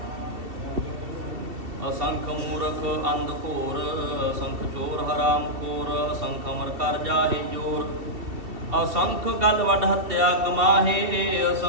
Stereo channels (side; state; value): left; late; 2.7 ms